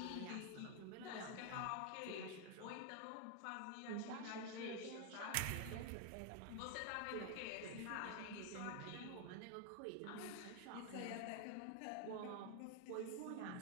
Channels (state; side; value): different; both; correlation 0.00